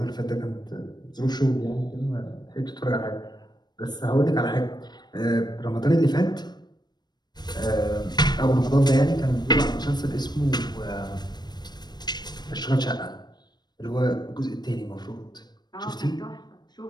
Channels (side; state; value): right; late; 0.20 ms